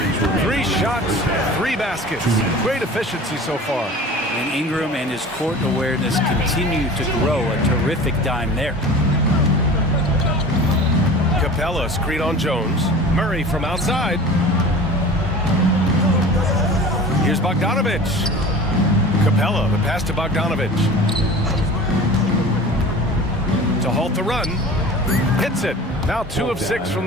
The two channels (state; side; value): normal; both; correlation 0.39